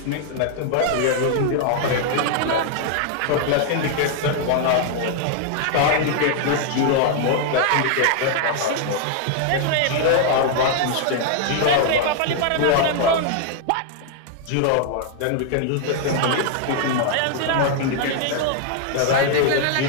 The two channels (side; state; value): both; different; correlation 0.00